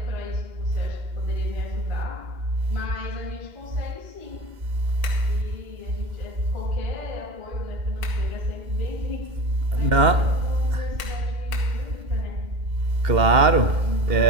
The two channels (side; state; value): left; late; 2.1 ms